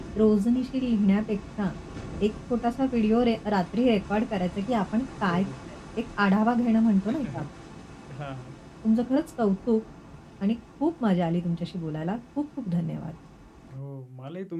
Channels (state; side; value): identical; both; correlation 1.00